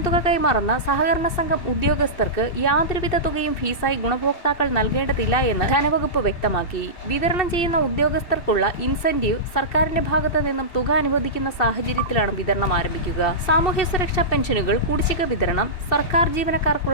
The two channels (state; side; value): late; right; 2.6 ms